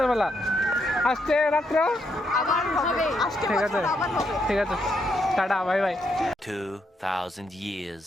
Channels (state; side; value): normal; both; correlation 0.78